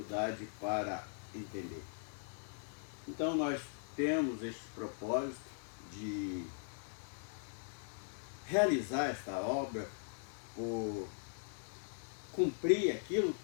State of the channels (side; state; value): right; silent; digital silence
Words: para entender. Então nós temos este propósito de realizar esta obra, por cumprir aquilo